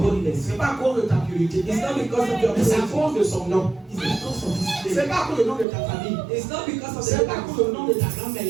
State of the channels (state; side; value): drops out; left; at 5.7 s